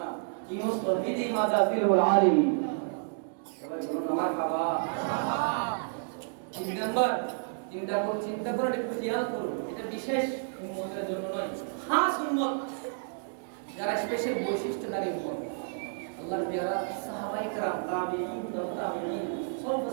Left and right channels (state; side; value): silent; left; digital silence